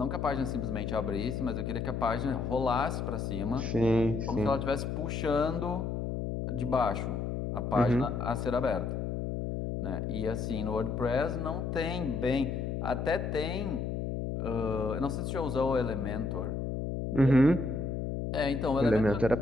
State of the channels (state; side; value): noise; left; hum, 2 dB below the sound